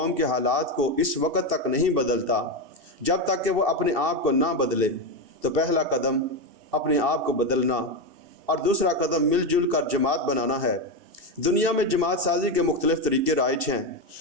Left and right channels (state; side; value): late; left; 2.7 ms